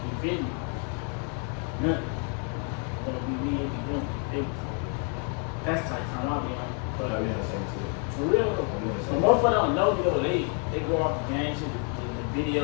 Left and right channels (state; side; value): quieter; right; 39.8 dB